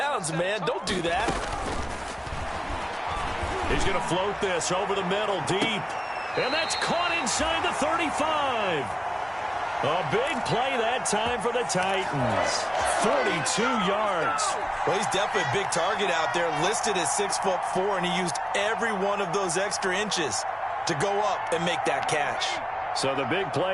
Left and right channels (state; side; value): identical; both; correlation 1.00